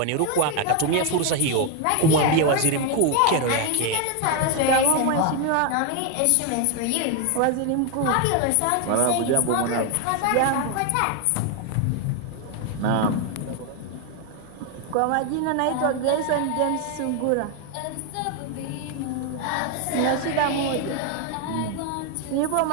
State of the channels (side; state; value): both; different; correlation 0.01